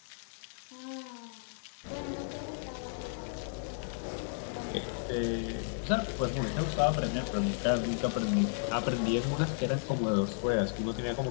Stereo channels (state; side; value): silent; right; digital silence